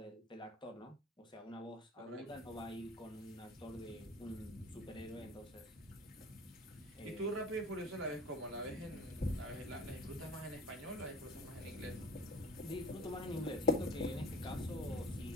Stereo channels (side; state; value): both; normal; correlation 0.44